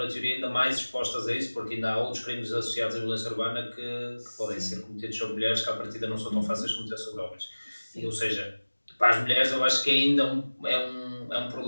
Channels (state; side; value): inverted; both; correlation -1.00